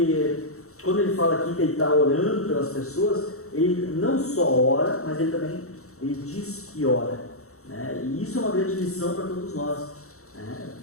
quando ele fala aqui que ele está orando pelas pessoas, ele não só ora, mas ele diz que ora. Né? E isso é uma grande lição para todos nós. Né?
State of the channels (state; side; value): late; right; 0.64 ms